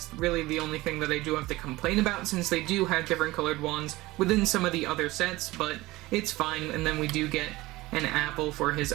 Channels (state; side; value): quieter; left; 19.3 dB